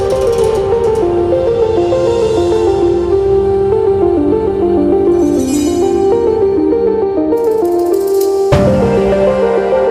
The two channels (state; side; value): identical; both; correlation 1.00